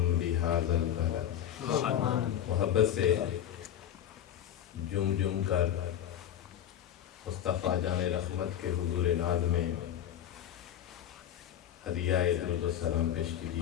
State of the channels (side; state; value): right; quieter; 10.5 dB